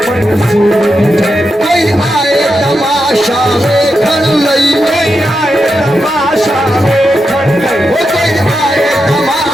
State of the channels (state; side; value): normal; both; correlation 0.87